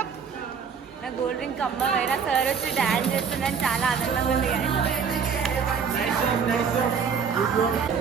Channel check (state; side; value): quieter; left; 6.4 dB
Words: నా గోల్డ్ డ్రింక్ అమ్మ వేరే సార్ వచ్చి డాన్స్ చేస్తున్నాను, చాలా ఆనందంగా ఉంది.